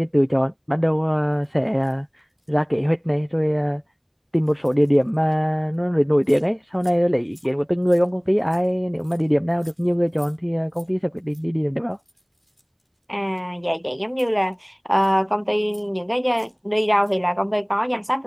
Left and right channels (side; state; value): both; identical; correlation 1.00